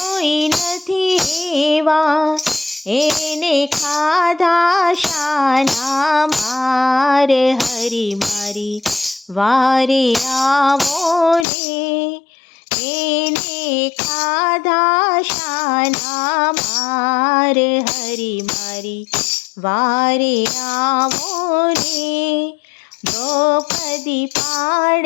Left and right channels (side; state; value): right; drops out; at 11.5 s